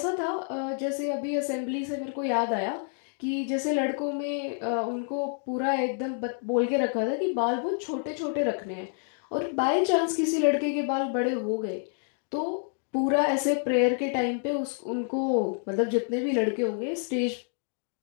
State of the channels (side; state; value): right; silent; 59 dB below the other